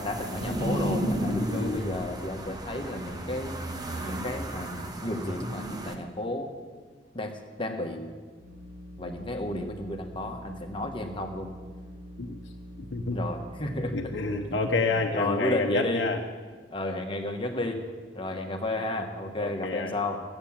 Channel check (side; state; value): both; normal; correlation 0.44